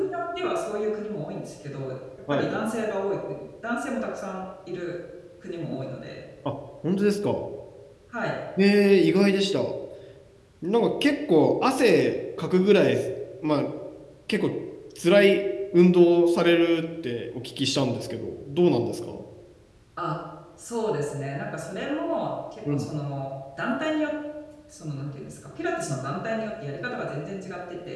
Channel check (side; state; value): both; identical; correlation 1.00